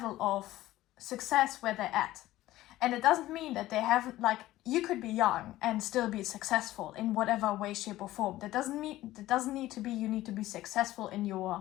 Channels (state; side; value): quieter; right; 15.8 dB